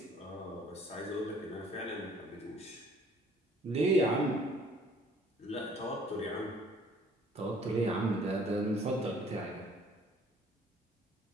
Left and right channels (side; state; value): both; normal; correlation 0.57